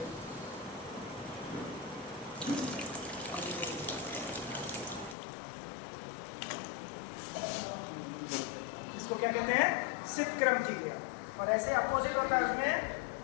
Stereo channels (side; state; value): right; drops out; at 5.2 s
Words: इसको क्या कहते हैं? सितक्रम की क्रिया। और ऐसे अपोजिट होता है, उसमें